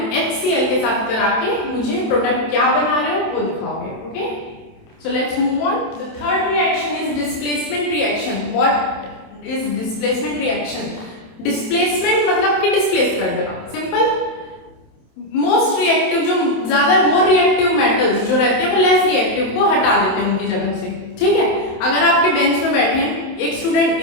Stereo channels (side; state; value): right; late; 27 ms